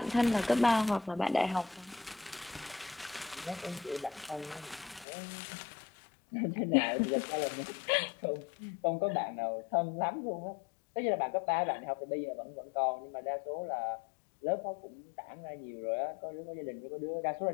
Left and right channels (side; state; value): right; drops out; at 5.1 s